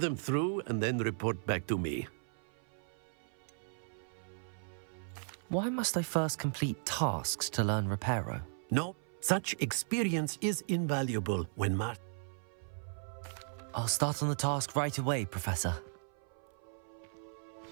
through and then report back to me. Why must I first complete tasks to learn Reparo? No, such experience is invaluable when I'll start on the task right away, Professor.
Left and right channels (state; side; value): silent; left; 54 dB below the other